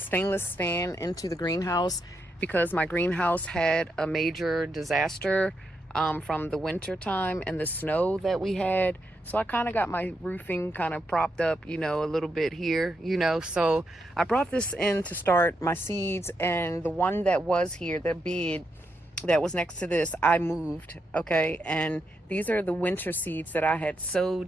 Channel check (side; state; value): both; normal; correlation 0.82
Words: stand into the greenhouse because my greenhouse had a major disaster from the winter time and the snow that we had. So I kind of got my roofing kind of propped up, a little bit here, So I brought this in to start my seeds, and the one that was here, the bed that was next to this, I moved, okay? And these are the winter seeds that I had